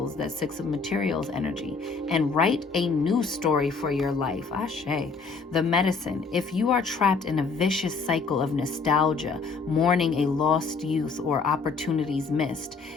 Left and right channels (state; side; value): quieter; right; 4.6 dB